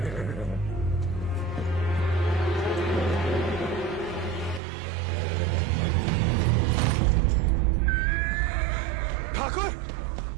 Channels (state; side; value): drops out; left; at 4.6 s